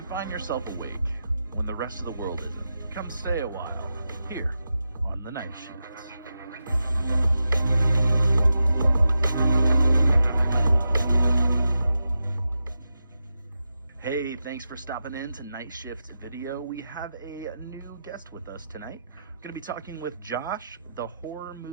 find yourself awake when the rest of the world isn't, come stay a while here on the Night Shift. Hey, thanks for stopping in to Night Shift Video. We have a new guest with us tonight. I'm going to be talking with Josh, the Horror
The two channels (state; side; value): inverted; both; correlation -0.88